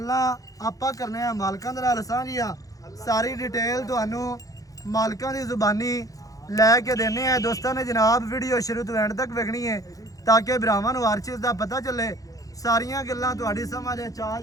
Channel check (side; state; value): right; late; 0.17 ms